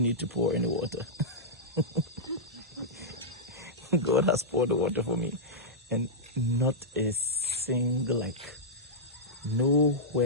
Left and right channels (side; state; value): both; normal; correlation -0.10